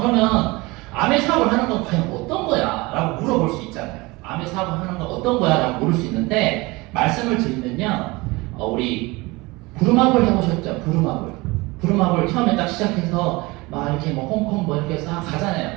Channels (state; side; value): quieter; left; 23.2 dB